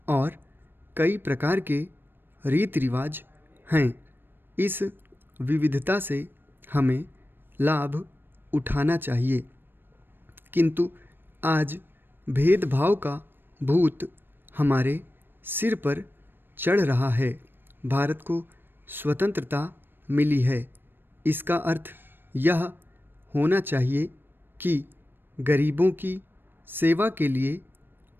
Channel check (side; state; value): left; late; 0.097 ms